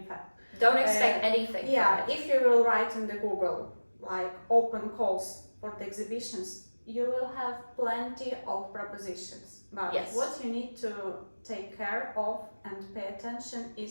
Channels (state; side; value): inverted; both; correlation -1.00